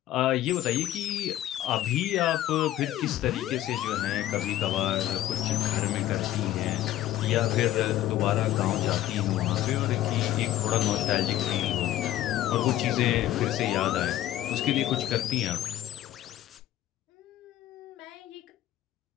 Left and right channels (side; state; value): right; quieter; 13.5 dB